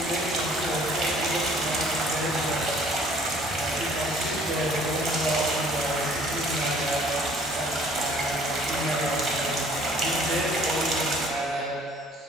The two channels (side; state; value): both; normal; correlation 0.56